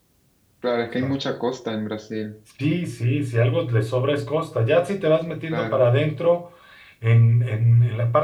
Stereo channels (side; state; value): both; identical; correlation 1.00